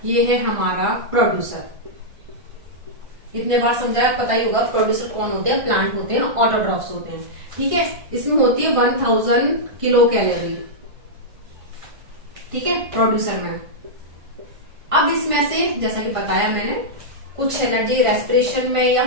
ये है हमारा प्रोड्यूसर, इतने बार समझाया, पता ही होगा प्रोड्यूसर कौन होते हैं, प्लांट होते हैं, ऑटोट्रॉफ्स होते हैं, ठीक है। इसमें होती है 1000 किलो कैलोरी, ठीक है, प्रोड्यूसर में। अब इसमें से जैसा कि बताया मैंने, कुछ एनर्जी रेस्पिरेशन में या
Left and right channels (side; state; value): left; late; 1.5 ms